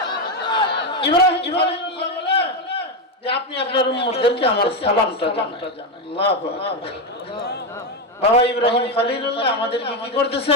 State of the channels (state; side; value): normal; both; correlation 0.10